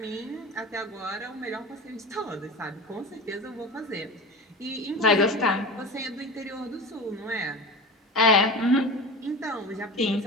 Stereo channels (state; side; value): normal; both; correlation 0.30